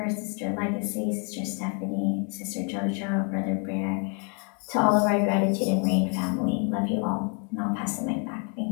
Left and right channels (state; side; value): quieter; right; 36.8 dB